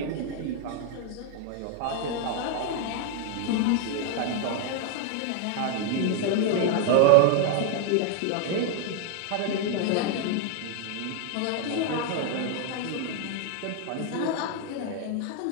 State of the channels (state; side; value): different; both; correlation 0.01